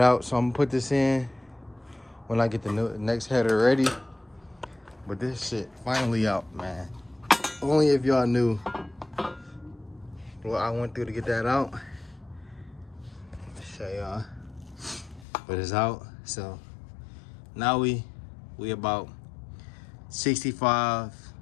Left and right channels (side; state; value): right; drops out; at 15.2 s